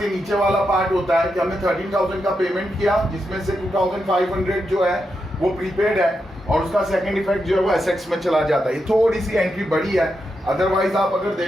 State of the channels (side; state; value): both; normal; correlation 0.85